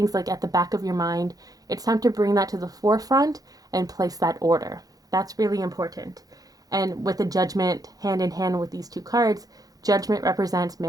like at the back of your mind, it's time to bring that to the forefront and place that order. That's really important. And with the Judgment hand in hand with these two cards, Judgment represents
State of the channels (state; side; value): late; left; 0.18 ms